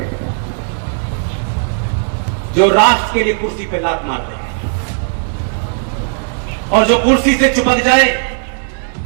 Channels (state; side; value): silent; left; digital silence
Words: जो राष्ट्र के लिए कुर्सी पे लात मार दे, और जो कुर्सी से चिपक जाए